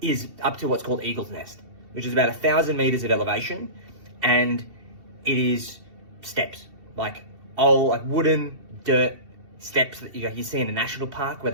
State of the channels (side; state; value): left; late; 2.7 ms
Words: is up to what's called Eagle's Nest, which is about 1,000 meters of elevation. And it is steps, like wooden dirt steps that you see in a national park where